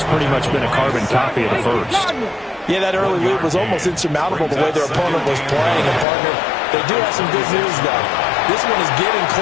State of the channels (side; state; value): right; drops out; at 6.1 s